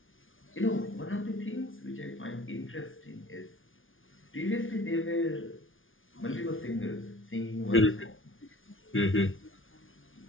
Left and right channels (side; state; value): right; late; 0.58 ms